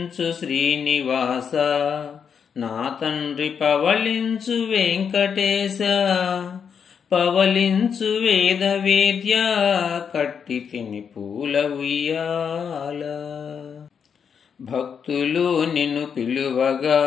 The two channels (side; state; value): right; quieter; 7.0 dB